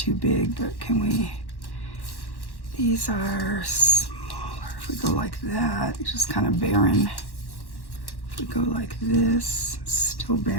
big, but can we... These are smaller. If we go like that, it's just kind of barren. If we go like this, still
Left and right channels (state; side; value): late; right; 1.1 ms